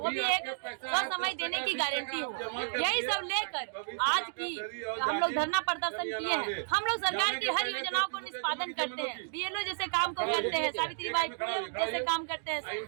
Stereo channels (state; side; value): silent; left; digital silence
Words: भी एक समय देने की गारंटी हो। यही सब लेकर आज की हम लोग धरना प्रदर्शन किए हैं। हम लोग सरकार की हर योजनाओं को निष्पादन करते हैं, BLO जैसे काम को करते हैं, सावित्रीबाई फुले जैसे काम करते हैं,